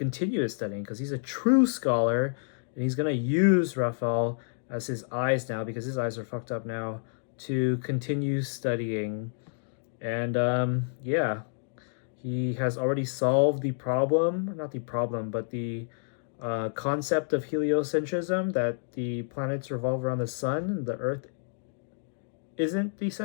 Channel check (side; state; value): right; silent; digital silence